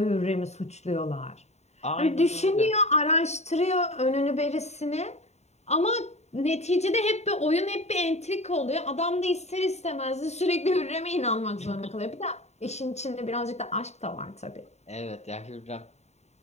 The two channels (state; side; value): late; right; 0.32 ms